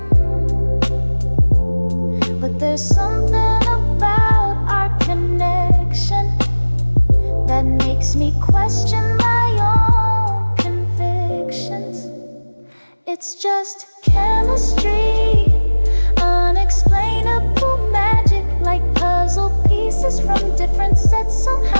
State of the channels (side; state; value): both; inverted; correlation -1.00